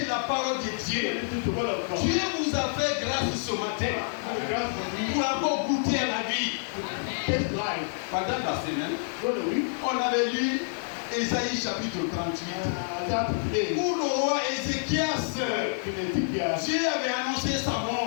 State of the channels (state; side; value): silent; right; 59 dB below the other